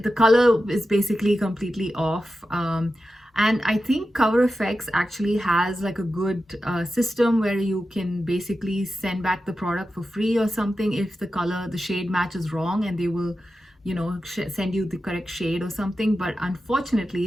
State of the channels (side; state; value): both; normal; correlation 0.91